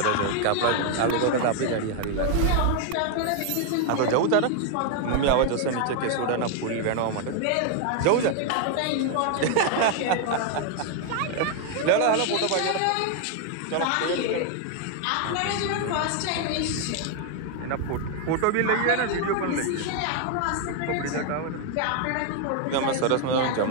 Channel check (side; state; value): both; different; correlation 0.00